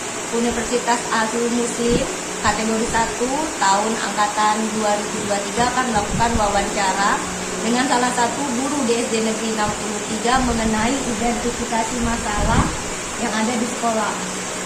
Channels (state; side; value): identical; both; correlation 1.00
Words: Universitas Al-Azhar Muslim kategori 1 tahun angkatan 2023 akan melakukan wawancara dengan salah satu guru di SD Negeri 63 mengenai identifikasi masalah yang ada di sekolah.